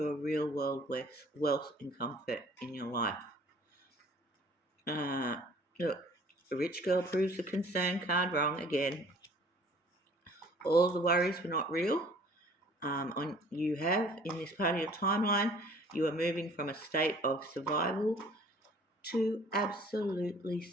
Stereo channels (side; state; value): both; normal; correlation 0.53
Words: a real world wealth and comfort in your life. Look, the rich girl proves the concern card wrong again. All the worries were not real. You have in this part of your timeline, you are moving from a state of survival to absolutely